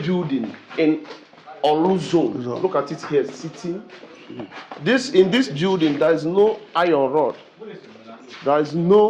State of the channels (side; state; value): both; identical; correlation 1.00